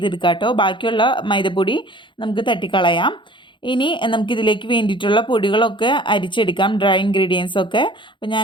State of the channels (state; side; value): late; right; 0.23 ms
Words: കേട്ടോ. ബാക്കിയുള്ള മൈദപ്പൊടി നമുക്ക് തട്ടിക്കളയാം. ഇനി നമുക്കിതിലേക്ക് വേണ്ടിയിട്ടുള്ള പൊടികളൊക്കെ അരിച്ചെടുക്കാം, ഡ്രൈ ഇൻഗ്രീഡിയൻസ് ഒക്കെ. അപ്പോൾ